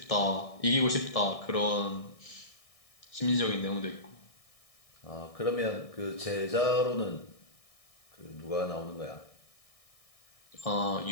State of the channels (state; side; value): late; right; 1.6 ms